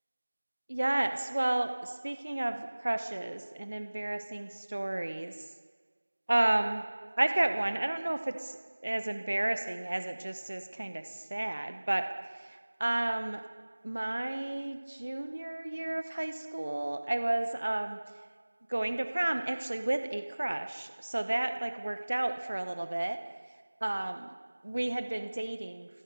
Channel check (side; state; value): both; inverted; correlation -1.00